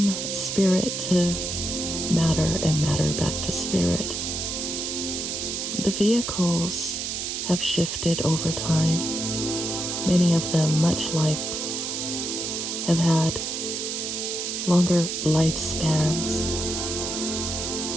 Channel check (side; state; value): right; noise; hiss, 3 dB below the sound